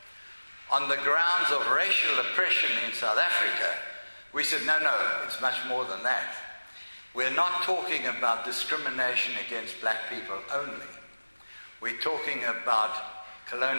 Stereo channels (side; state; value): both; inverted; correlation -1.00